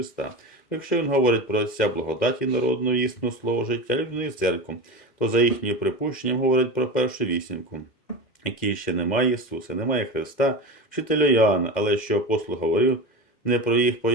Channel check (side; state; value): right; late; 2.1 ms